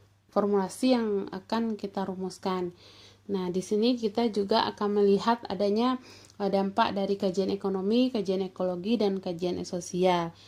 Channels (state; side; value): identical; both; correlation 1.00